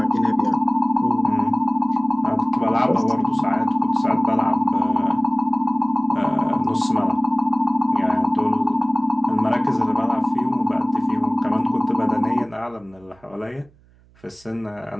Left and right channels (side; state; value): right; noise; hum, 30 dB below the sound